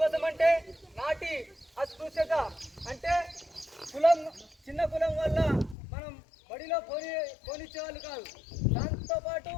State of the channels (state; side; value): drops out; right; at 5.8 s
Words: అంటే నాటి అస్పృశ్యత, అంటే కులం, చిన్న కులం వల్ల మనం బడిలో పోనిచ్చేవాళ్ళు కాదు. దాంతోపాటు